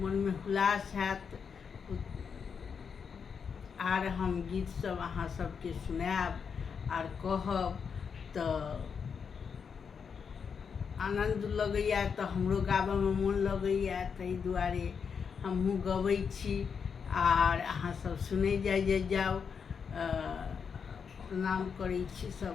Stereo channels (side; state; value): right; quieter; 6.3 dB